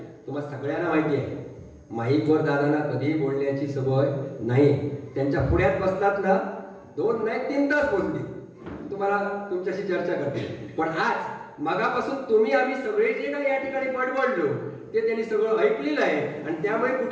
तुम्हाला सगळ्यांना माहिती आहे माईकवर दादांना कधीही बोलण्याची सवय नाही. त्यांच्या पुढ्यात बसतात ना 2 नाही 3 तास बोलतील, तुम्हाला तुमच्याशी चर्चा करतील. पण आज मगापासून तुम्ही आम्ही सगळे जे काही या ठिकाणी बडबडलो ते त्यांनी सगळं ऐकलेलं आहे आणि त्यामुळे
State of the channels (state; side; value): identical; both; correlation 1.00